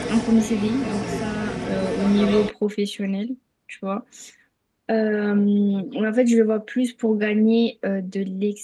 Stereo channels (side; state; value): both; identical; correlation 1.00